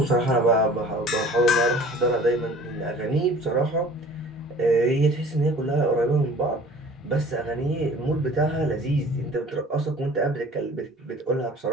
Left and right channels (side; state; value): both; normal; correlation 0.47